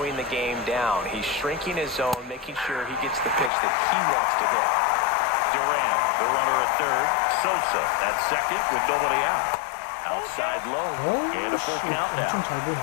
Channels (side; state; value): right; drops out; at 3.5 s